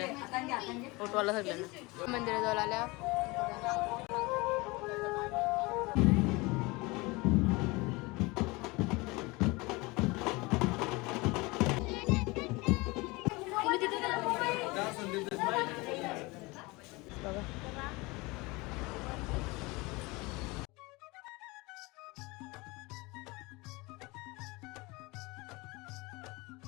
फोटोवाला सगळ्यांना मंदिरात जाऊन आल्या.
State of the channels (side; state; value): right; quieter; 24.2 dB